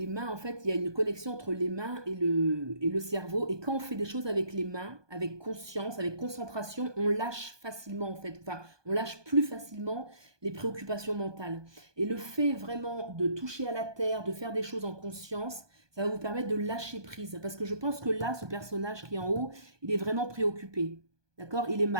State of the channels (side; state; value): left; late; 1.2 ms